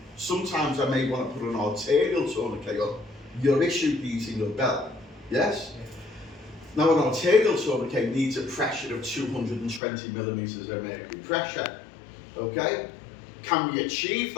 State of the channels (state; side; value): drops out; right; at 9.8 s